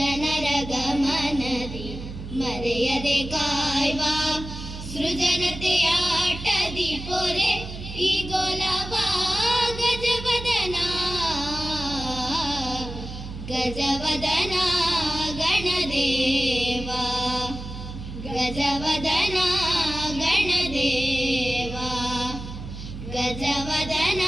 ಗಮನದಿ ಮರೆಯದೆ ಕಾಯ್ವಾ ಸೃಜನತೆಯಾಟದಿ ಪೊರೆ ಈ ಗೋಲವಾ ಗಜವದನಾ ಗಜವದನಾ ಗಣದೇವಾ ಗಜವದನಾ ಗಣದೇವಾ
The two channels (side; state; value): right; noise; hum, 10 dB below the sound